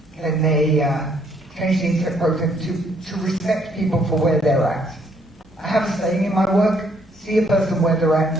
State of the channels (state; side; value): normal; both; correlation 0.68